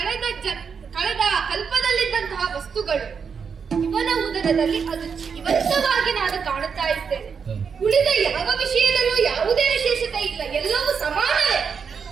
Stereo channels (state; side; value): quieter; left; 6.2 dB